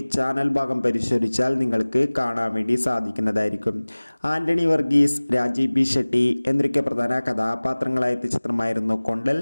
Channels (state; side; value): inverted; both; correlation -1.00